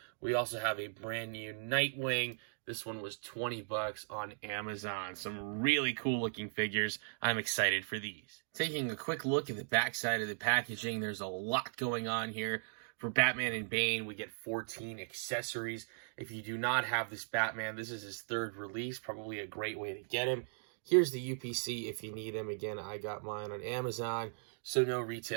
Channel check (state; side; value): silent; left; digital silence